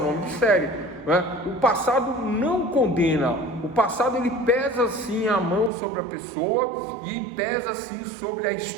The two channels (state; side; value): drops out; left; at 5.7 s